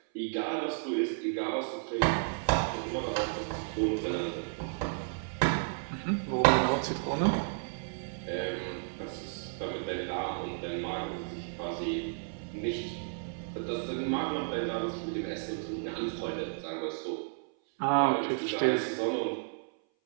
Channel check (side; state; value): left; silent; 56 dB below the other